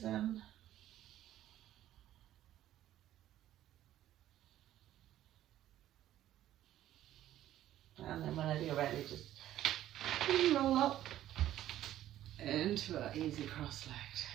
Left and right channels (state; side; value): quieter; left; 12.9 dB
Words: in. And then whenever you're ready, just roll up into an easy cross-legged.